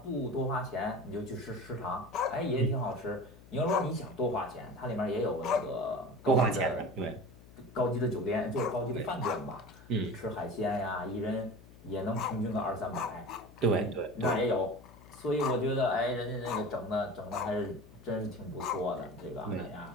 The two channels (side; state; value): left; noise; hum, 21 dB below the sound